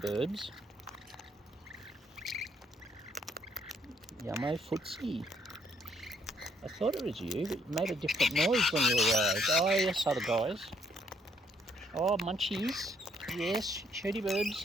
Yummo, Footsie. I thought it was you, but you made a different noise when you arrived. Oh, yes, other guys. Oh, munchies. Yes, shirty Birbs.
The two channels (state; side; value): normal; both; correlation 0.69